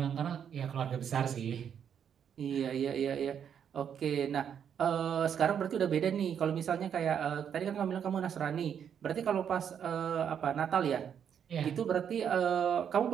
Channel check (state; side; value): quieter; left; 8.3 dB